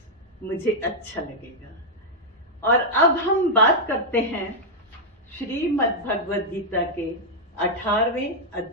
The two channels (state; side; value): normal; both; correlation -0.04